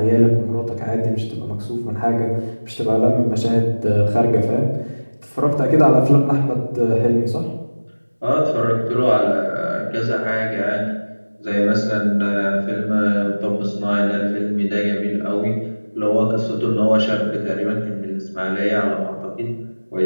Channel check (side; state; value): both; inverted; correlation -1.00